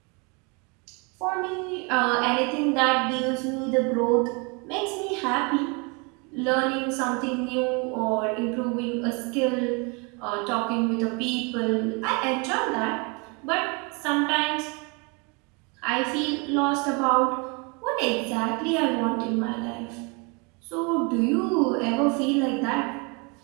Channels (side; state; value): left; quieter; 31.4 dB